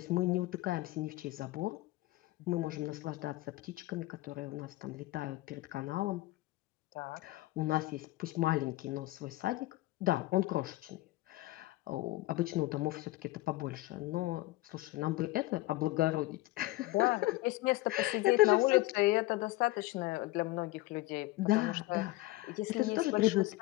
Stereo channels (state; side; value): quieter; right; 18.6 dB